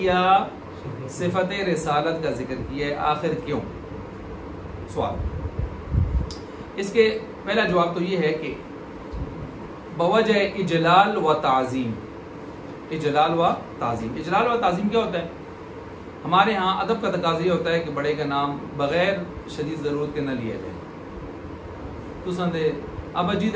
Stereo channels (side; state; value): both; identical; correlation 1.00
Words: صفت رسالت کا ذکر کیا ہے. آخر کیوں؟ سوال. اس کے پہلا جواب تو یہ ہے کہ بوجہ اجلال و تعظیم. اجلال و تعظیم، اجلال و تعظیم کیا ہوتا ہے؟ ہمارے ہاں ادب کا تقاضا یہ ہوتا ہے کہ بڑے کا نام بغیر شدید ضرورت کے نہ لیا جائے. تو سندے اب اجید